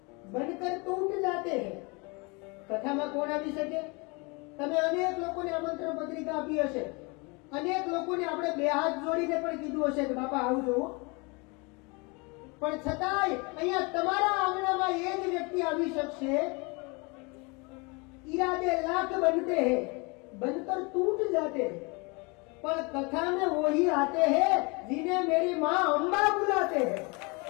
बनकर टूट जाते हैं कथाમાં કોણ આવી શકે તમે અનેક લોકોને આમંત્રણ પત્રિકા આપી હશે અનેક લોકોને આપણે બે હાથ જોડીને પણ કીધું હશે કે બાપા આવજો પણ છતાંય અહીંયા તમારા આંગણામાં એ જ વ્યક્તિ આવી શકશે इरादे लाख बनते हैं बनकर टूट जाते हैं पर कथा में वही आते हैं जिन्हें मेरी माँ अंबा बुलाते हैं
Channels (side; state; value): right; quieter; 29.1 dB